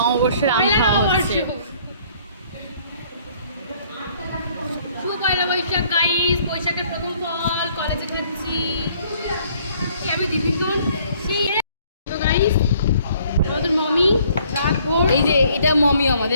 আম খাওয়া হচ্ছে। শুভ পয়লা বৈশাখ গাইস, বৈশাখের প্রথম ফল কলেজে খাচ্ছি। আমি দিদিগণ সেই তো গাইস আমাদের মমি এই যে এটা মমি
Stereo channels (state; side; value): inverted; both; correlation -0.61